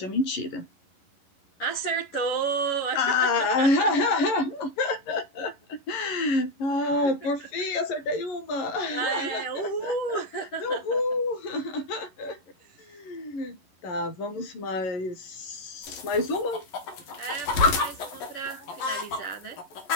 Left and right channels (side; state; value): right; late; 11 ms